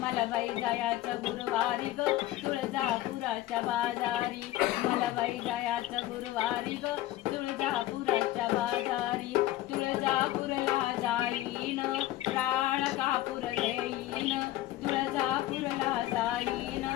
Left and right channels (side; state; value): right; quieter; 15.2 dB